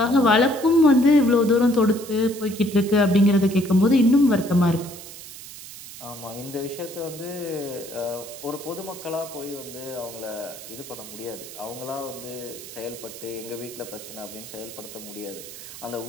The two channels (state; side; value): noise; right; hiss, 14 dB below the sound